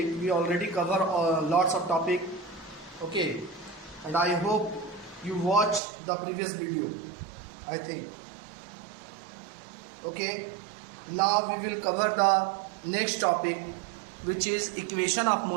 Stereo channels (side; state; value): left; drops out; at 5.8 s